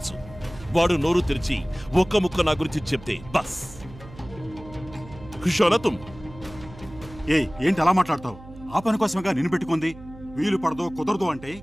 వాడు నోరు తెరిచి ఒక్క ముక్క నా గురించి చెప్తే బస్ ఖుషోనా తుమ్. ఏంటి అలా మాట్లాడతావు? ఆ పని కోసమేగా నిన్ను పెట్టుకుంది. వీలు పడదో కుదరదు అంటే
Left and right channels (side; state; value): right; noise; hum, 18 dB below the sound